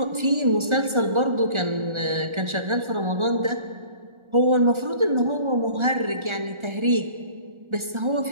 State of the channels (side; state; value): left; late; 1.4 ms